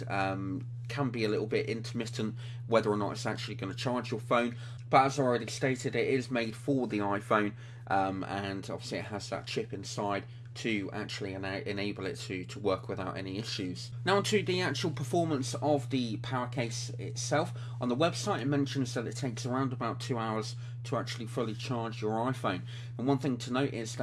can be a little bit intermittent whether or not it's actually going to charge your phone. But as I already stated, it is made for the iPhone, and obviously it has that chip inside to actually enable it to work without any issues. Now onto the actual performance of the Powercase itself. On the website it mentions that it takes around about 2 hours to actually fully charge your iPhone. And one thing to note is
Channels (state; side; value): identical; both; correlation 1.00